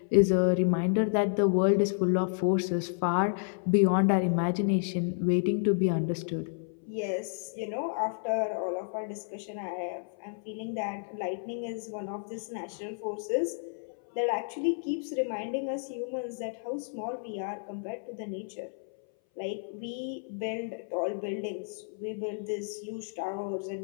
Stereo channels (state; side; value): silent; right; 57 dB below the other